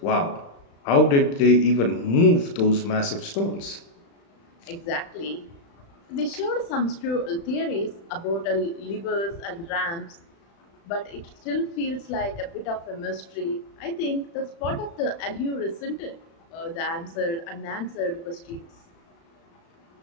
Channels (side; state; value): right; late; 35 ms